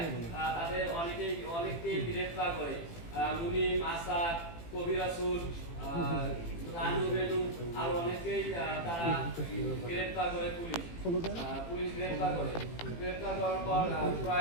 তাদের অনেককেই গ্রেফতার করে। মুনিম, আসাদ, কবি রাসুল, রানু বেনু আর অনেককেই তারা গ্রেফতার করে পুলিশ গ্রেফতার করার পর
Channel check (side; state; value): right; late; 18 ms